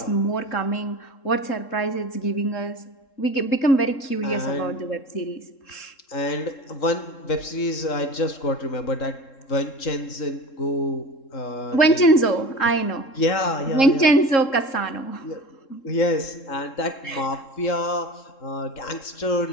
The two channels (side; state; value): right; late; 3.7 ms